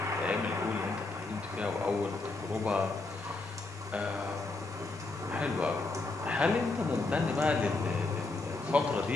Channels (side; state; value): right; quieter; 3.4 dB